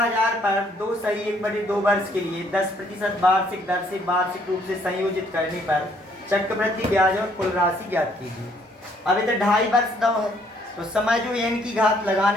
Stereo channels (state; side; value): normal; both; correlation 0.65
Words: पर 2 सही 1/2 वर्ष के लिए 10% वार्षिक दर से वार्षिक रूप से संयोजित करने पर चक्रवृद्धि ब्याज और कुल राशि ज्ञात कीजिए। अब इधर 2.5 वर्ष दो है तो समय जो n की घात